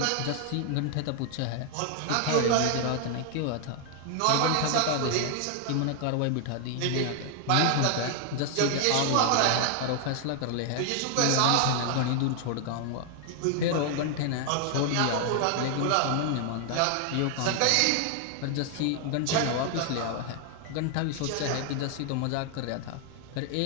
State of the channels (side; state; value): both; different; correlation 0.00